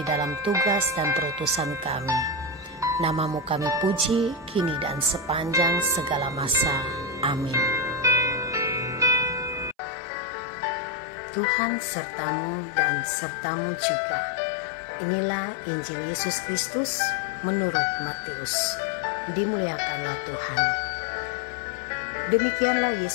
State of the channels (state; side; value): drops out; right; at 9.8 s